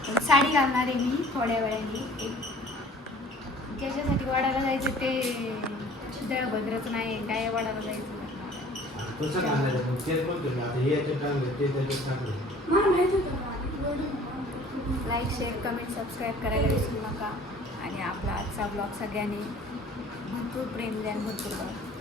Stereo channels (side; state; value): both; normal; correlation 0.50